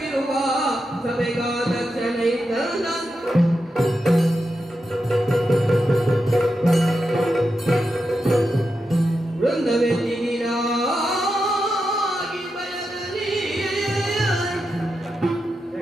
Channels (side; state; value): both; normal; correlation 0.88